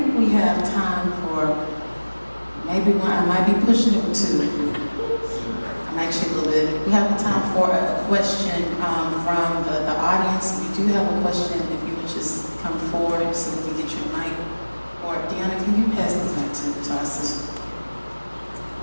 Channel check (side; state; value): both; inverted; correlation -1.00